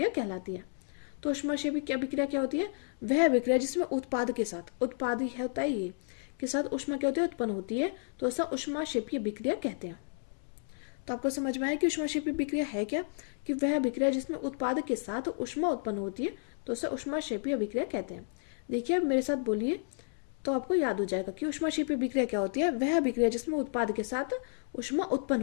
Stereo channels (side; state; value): right; silent; digital silence